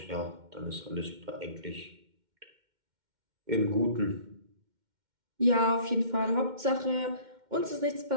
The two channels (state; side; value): late; left; 2.1 ms